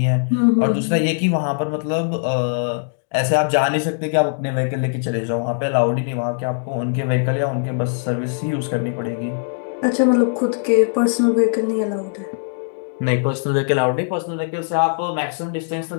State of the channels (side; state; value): right; silent; digital silence